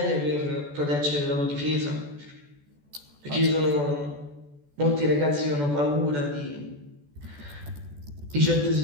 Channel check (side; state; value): left; late; 14 ms